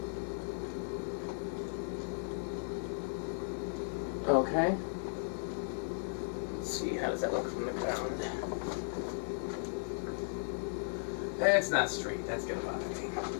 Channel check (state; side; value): silent; right; digital silence